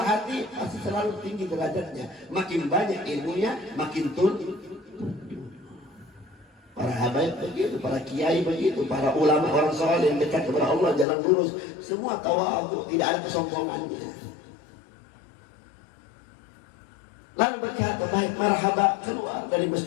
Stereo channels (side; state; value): right; drops out; at 11.1 s